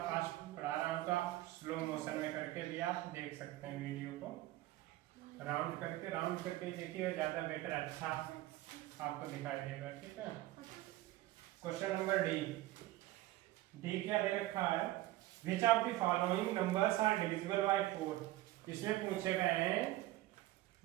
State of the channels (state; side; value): quieter; left; 16.6 dB